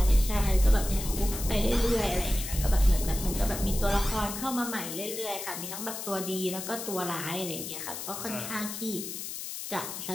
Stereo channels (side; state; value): left; noise; hiss, 7 dB below the sound